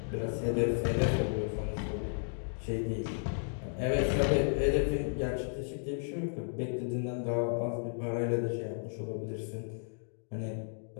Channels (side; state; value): right; silent; digital silence